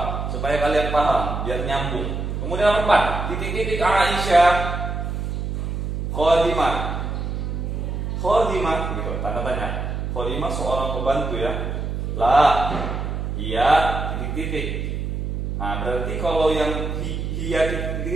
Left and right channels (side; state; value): right; noise; hum, 3 dB below the sound